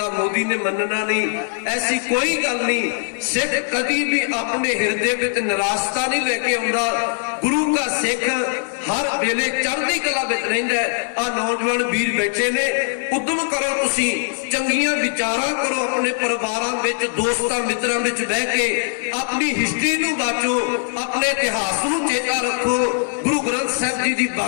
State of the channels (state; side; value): silent; right; digital silence